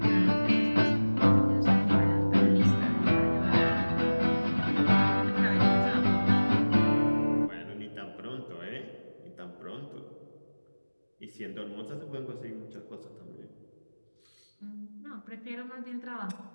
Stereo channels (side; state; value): both; inverted; correlation -1.00